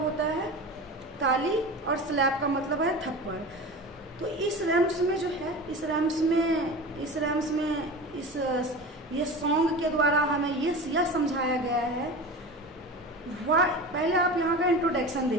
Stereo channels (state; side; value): normal; both; correlation 0.32